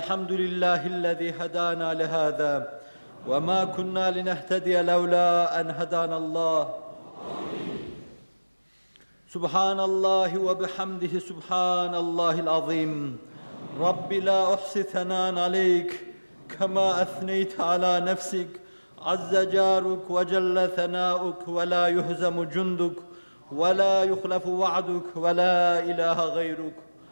hedâna lihâzâ ve mâ kunnâ linehtediye levlâ en hedânallâh. Subhanallahi ve bihamdihi subhanallahil azim. Rabbi la uhsi thanan aleyk kema ethneyte ala nefsik. Azze caruk ve celle thanâuk ve la yuhzemu cunduk ve la yuhlefu va'duk ve la ilahe gayruk.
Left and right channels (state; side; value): inverted; both; correlation -1.00